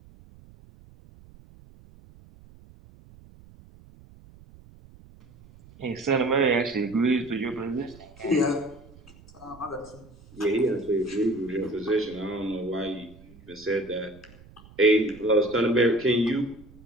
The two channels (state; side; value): noise; right; rumble, 23 dB below the sound